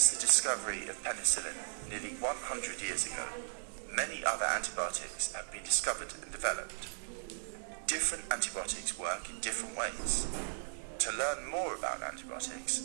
the discovery of penicillin nearly 100 years ago, many other antibiotics have been discovered and developed. Different antibiotics work in different ways. To learn more about antibiotics,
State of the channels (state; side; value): silent; left; digital silence